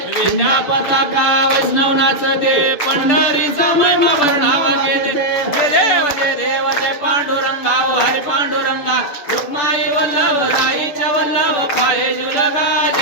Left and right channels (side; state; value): right; late; 6.9 ms